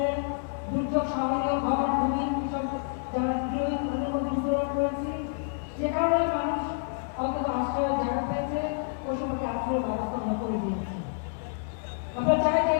দুর্যোগ সহনীয় ঘর ভূমি কৃষক যারা তাদের মধ্যে বিতরণ করেছি, যে কারণে মানুষ অন্তত আশ্রয়ের জায়গা পেয়েছে, ওই সময়কে আশ্রয়ের ব্যবস্থা আমরা করে দিয়েছি। আমরা চাই যে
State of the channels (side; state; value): right; silent; digital silence